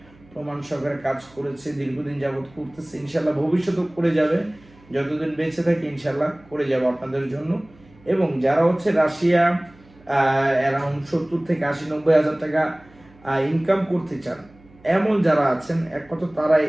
প্রমাণ সহকারে কাজ করেছে, দীর্ঘদিন যাবত করতেছে, ইনশাল্লাহ ভবিষ্যতেও করে যাবে, যতদিন বেঁচে থাকে ইনশাল্লাহ করে যাবো আপনাদের জন্য। এবং যারা রাশিয়া অ্যারাউন্ড 70 থেকে 80-90 হাজার টাকা ইনকাম করতে চান, এমন যারা আছেন একমাত্র তারাই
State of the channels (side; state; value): right; noise; hum, 27 dB below the sound